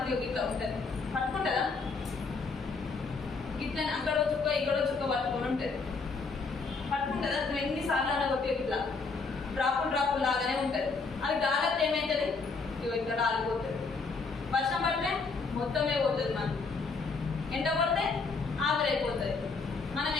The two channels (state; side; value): quieter; right; 4.4 dB